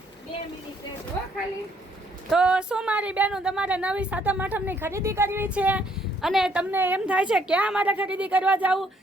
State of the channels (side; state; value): both; normal; correlation 0.68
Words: 2 મિનિટ રહેજો ખાલી. તો શું મારી બેનો તમારે નવી સાતમ આઠમની ખરીદી કરવી છે અને તમને એમ થાય છે ક્યાં મારે ખરીદી કરવા જાવું,